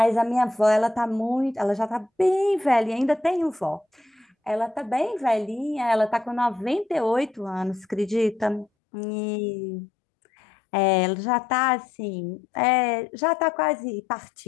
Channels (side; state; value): right; drops out; at 8.7 s